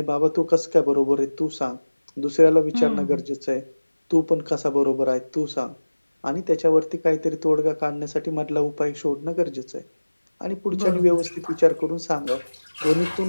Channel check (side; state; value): both; inverted; correlation -1.00